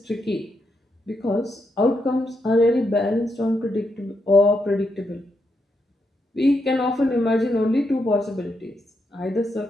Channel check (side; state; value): both; normal; correlation 0.81